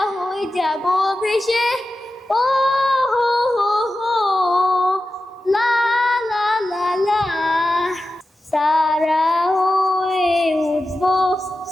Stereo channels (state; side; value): normal; both; correlation 0.93